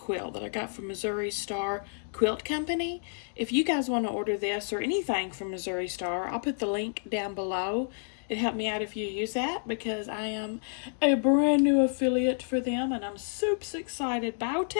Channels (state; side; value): silent; right; digital silence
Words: that I got from Missouri Star Quilt Company. If you guys want to order this or anything from Missouri Star, I'll put the link down below. It helped me out if you use that because I am a brand new affiliate for them and I'm super excited about